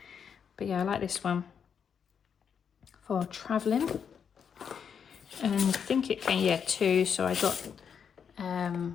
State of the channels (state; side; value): quieter; right; 7.2 dB